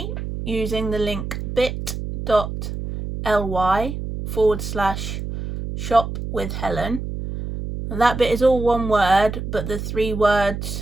using the link bit.ly/shop with Helen. And that bit is all one word, but the 3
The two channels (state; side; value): noise; right; hum, 6 dB below the sound